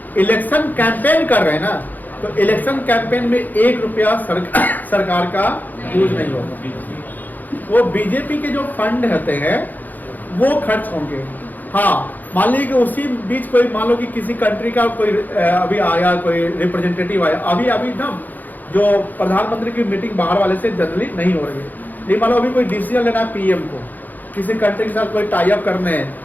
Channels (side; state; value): right; late; 0.084 ms